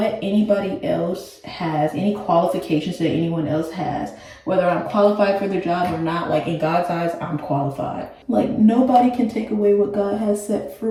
anybody else has, any qualifications that anyone else has, whether I'm qualified for the job or not, like in God's eyes, I'm qualified. Like nobody can take away what God has set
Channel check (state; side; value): identical; both; correlation 1.00